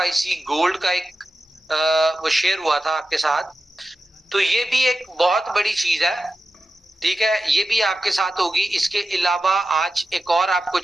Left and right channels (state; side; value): normal; both; correlation 0.92